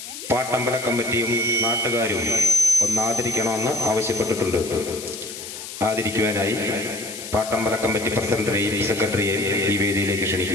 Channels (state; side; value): noise; left; hiss, 10 dB below the sound